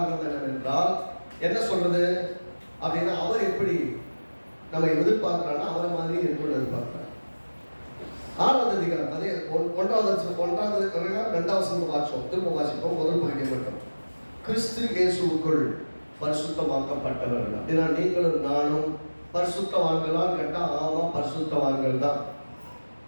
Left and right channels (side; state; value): both; inverted; correlation -1.00